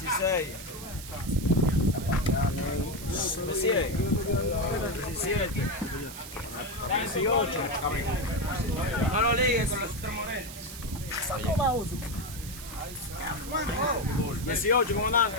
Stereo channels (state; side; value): noise; right; hiss, 12 dB below the sound